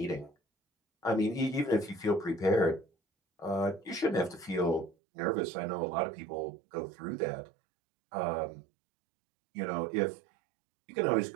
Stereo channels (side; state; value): left; drops out; at 5.0 s